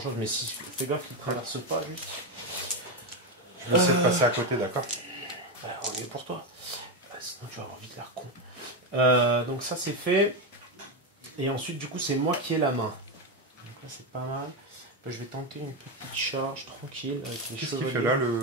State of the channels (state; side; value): normal; both; correlation 0.10